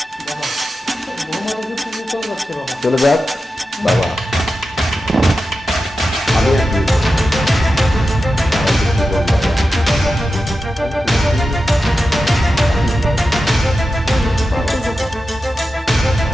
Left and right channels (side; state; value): both; normal; correlation 0.92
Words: চলে যাক বাবা। আমি আর কি বলবো?